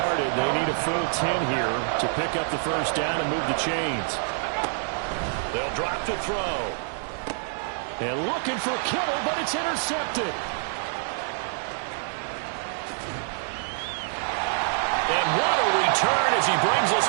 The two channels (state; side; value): silent; left; 61 dB below the other